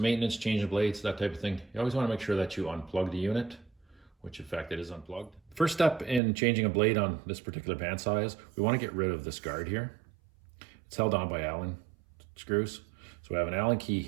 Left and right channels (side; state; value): left; drops out; at 6.2 s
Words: changing blades, that type of thing, you always want to make sure that you unplug the unit, which in fact it is unplugged. First step in changing a blade on this particular bandsaw is we want to get rid of this guard here. It's held on by Allen screws. So we have an Allen key